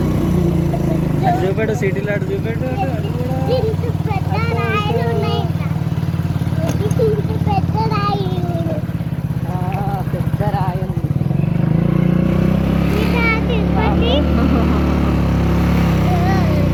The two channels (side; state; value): both; identical; correlation 1.00